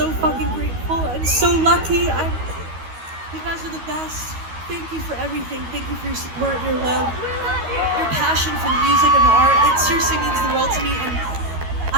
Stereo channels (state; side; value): late; left; 13 ms